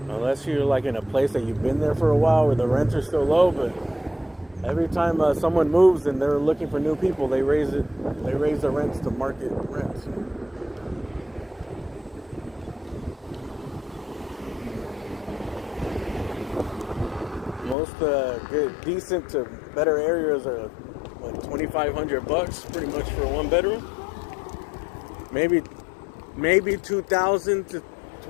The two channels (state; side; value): drops out; right; at 17.8 s